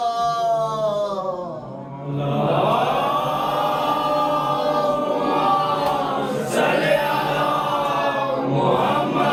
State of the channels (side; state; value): both; identical; correlation 1.00